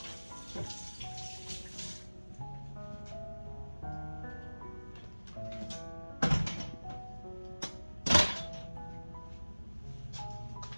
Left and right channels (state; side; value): inverted; both; correlation -1.00